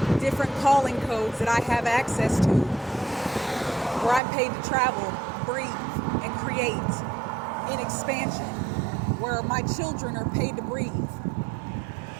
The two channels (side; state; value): left; drops out; at 4.2 s